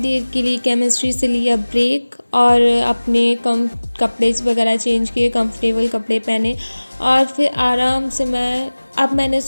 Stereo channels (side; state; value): both; inverted; correlation -1.00